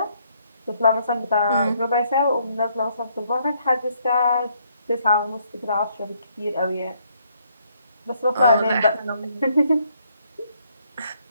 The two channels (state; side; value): inverted; both; correlation -0.70